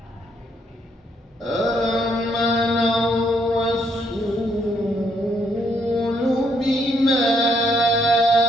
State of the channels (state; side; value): normal; both; correlation 0.72